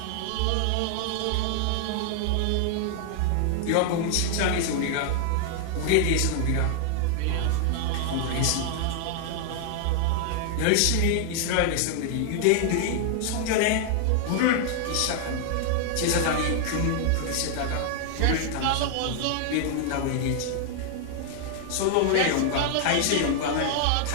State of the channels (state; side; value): different; both; correlation 0.00